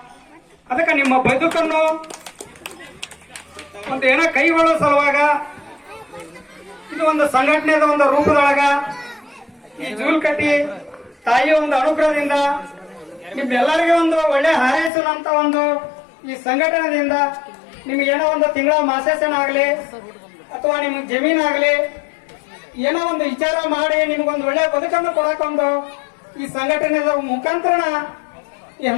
ಅದಕ್ಕೆ ನಿಮ್ಮ ಬದುಕನ್ನು ಒಂದು ಏನೋ ಕೈಗೊಳ್ಳೋ ಸಲುವಾಗ ಇದು ಒಂದು ಸಂಘಟನೆದ ಒಂದು ರೂಪದೊಳಗ ಈ ಜೂಲ್ಕಟ್ಟಿ ತಾಯಿಯ ಒಂದು ಅನುಗ್ರಹದಿಂದ ನಿಮ್ಮೆಲ್ಲರಿಗೆ ಒಂದು ಒಳ್ಳೆ ಹಾರೈಸುವಂತ ಒಂದು ಈ ಸಂಘಟನೆಯಿಂದ ನಿಮ್ಗೇನೋ ಒಂದು ತಿಂಗಳ ಮಾಸಾಸನ ಆಗ್ಲಿ ಅಥವಾ ನಿಮ್ಗೆ ಜಮೀನಾಗ್ಲಿ ಏನೋ ಒಂದು ವಿಚಾರ ಮಾಡಿ ನಿಮ್ಗೊಂದು ಒಳ್ಳೆ ಬದುಕನ್ನು ಕೊಡಕೊಂದು ಈ ಸಂಘಟನೆದ ಮುಖಾಂತರ ಈ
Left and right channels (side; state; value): right; drops out; at 14.9 s